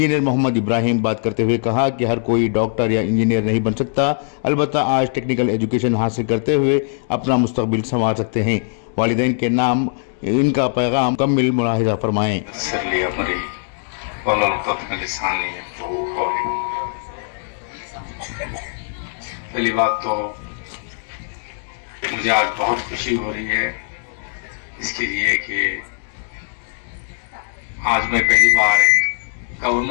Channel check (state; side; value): silent; right; digital silence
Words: मोहम्मद इब्राहिम बात करते हुए कहा कि हर कोई डॉक्टर या इंजीनियर नहीं बन सकता, अलबत्ता आज टेक्निकल एजुकेशन हासिल करते हुए अपना मुस्तकबिल संवार सकते हैं। वालिदैन के नाम इनका पैगाम मुकम्मल मुलाहिजा फरमाएं। पहली बात तो मुझे आज बहुत खुशी हो रही है इसके लिए कि आज मैं पहली बार एक